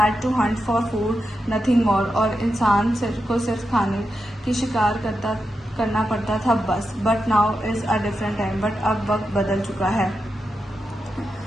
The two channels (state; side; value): normal; both; correlation 0.88